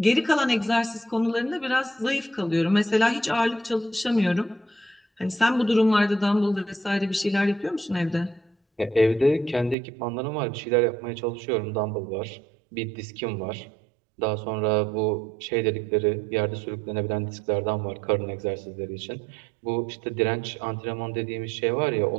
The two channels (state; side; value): drops out; left; at 9.8 s